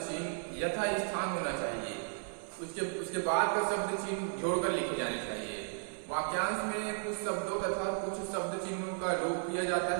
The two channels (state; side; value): silent; left; 55 dB below the other